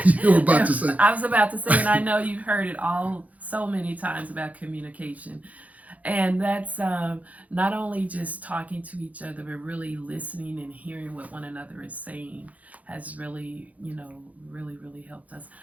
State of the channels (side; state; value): left; late; 0.072 ms